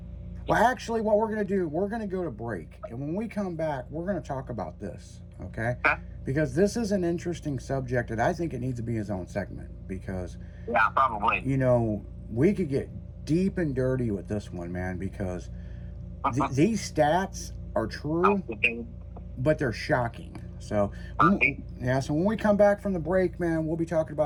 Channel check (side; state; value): both; identical; correlation 1.00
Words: Well, actually, what we're going to do, we're going to go to break. And when we come back, we're going to talk about this, okay? Because this is an interesting subject, and I think it needs to be its own segment. Because, Yeah, probably. you know, we could get deep and dirty with this one, man, because these stats are true, but they're shocking. So, so when we come back from the break, man, we'll be talking